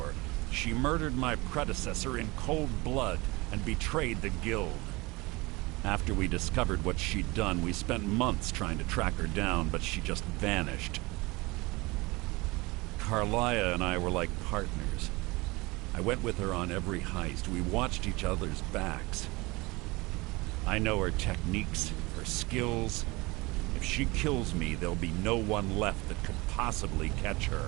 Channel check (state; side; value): quieter; left; 23.7 dB